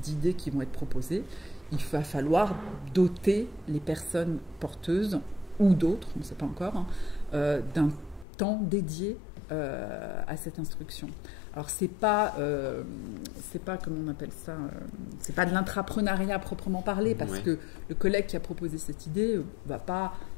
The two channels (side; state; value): right; drops out; at 8.2 s